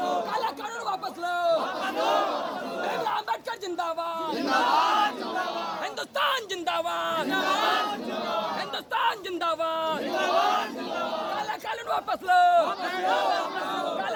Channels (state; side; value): identical; both; correlation 1.00